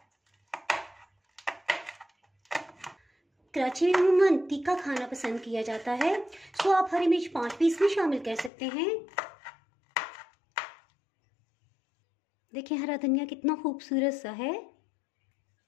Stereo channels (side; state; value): right; drops out; at 8.5 s